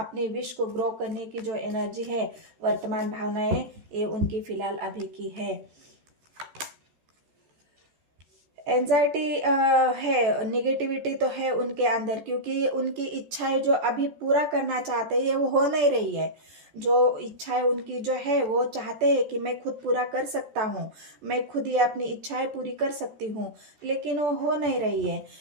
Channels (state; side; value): late; left; 13 ms